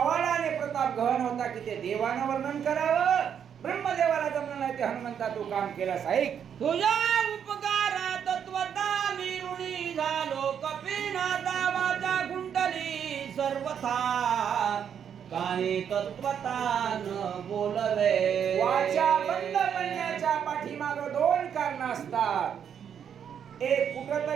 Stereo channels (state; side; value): quieter; left; 8.2 dB